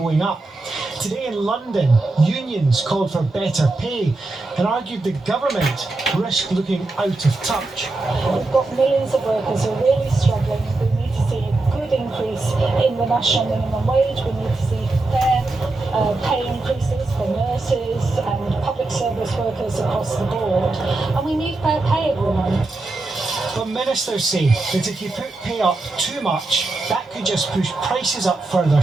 up. Today in London, unions called for better pay and argued the government risked looking out of touch. We've got millions of workers who are really struggling. We need to see a good increase in the national minimum wage. We need to see fair pay increases for nurses and public service workers across the board. And we need fair pay, everyone. But ministers say that if you put pay up too much, that could just push prices up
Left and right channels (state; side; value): quieter; left; 3.1 dB